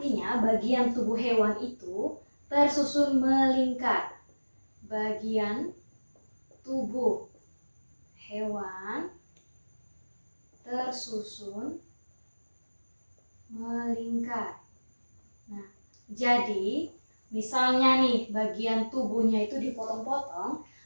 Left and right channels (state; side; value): inverted; both; correlation -1.00